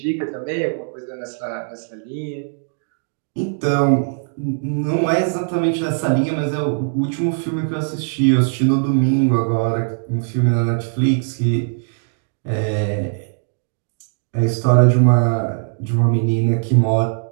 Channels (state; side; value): silent; left; digital silence